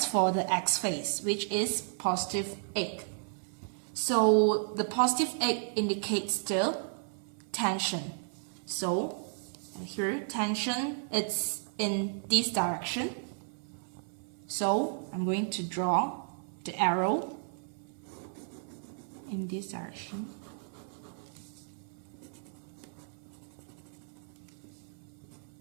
for the x phase, which is positive 8. So the positive 8 indicates the tension. So here tension, it's in this direction. So I'm going to draw the arrow in this direction.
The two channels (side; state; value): left; silent; 55 dB below the other